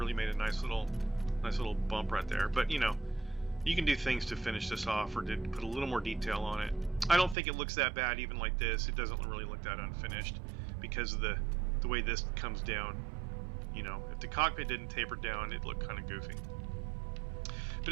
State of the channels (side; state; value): left; drops out; at 7.4 s